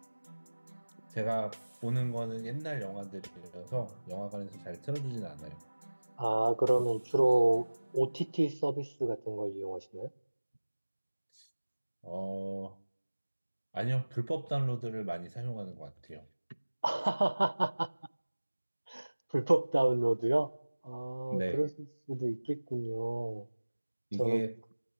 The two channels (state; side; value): inverted; both; correlation -1.00